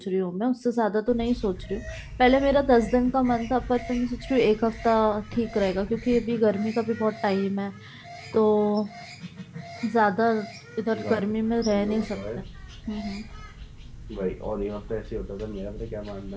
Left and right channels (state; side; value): identical; both; correlation 1.00